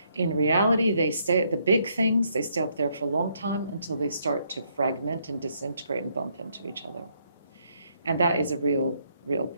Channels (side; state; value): both; inverted; correlation -0.72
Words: In reality, the big things, they stay up there for a long time until they start to fragment and disintegrate and bump into each other. And that is a real